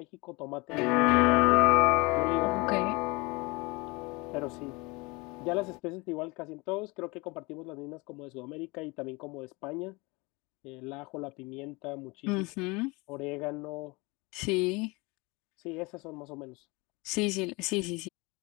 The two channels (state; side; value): quieter; right; 25.7 dB